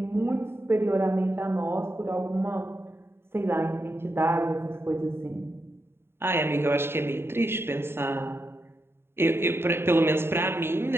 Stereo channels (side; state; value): left; late; 0.11 ms